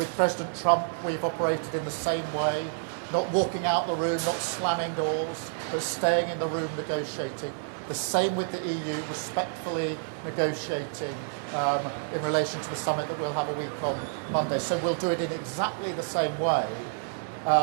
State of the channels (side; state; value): left; silent; 59 dB below the other